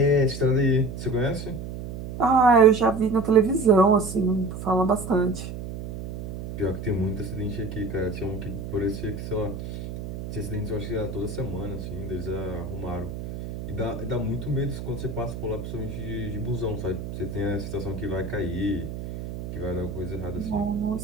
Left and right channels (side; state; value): right; noise; hum, 8 dB below the sound